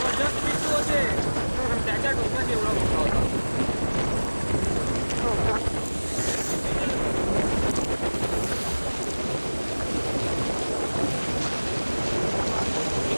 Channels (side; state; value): both; inverted; correlation -1.00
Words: मिठू होते. त्याच्या डोक्यात एवढा मोठा होता. हो का?